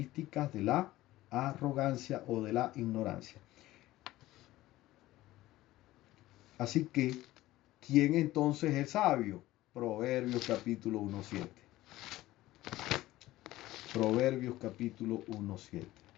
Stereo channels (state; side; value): quieter; right; 16.6 dB